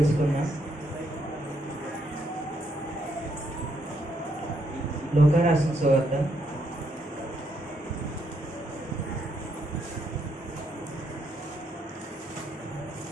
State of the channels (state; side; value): normal; both; correlation 0.75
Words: లోకా రాసిన సువార్త